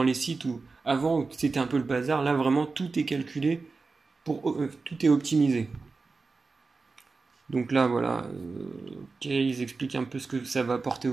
les sites où avant c'était un peu le bazar. Là, vraiment, tout est calculé, tout est optimisé. Donc là, voilà, ils expliquent un peu ce que ça va apporter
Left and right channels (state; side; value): quieter; left; 4.1 dB